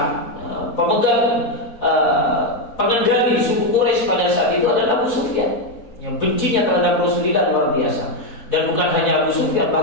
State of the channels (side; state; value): right; late; 4.1 ms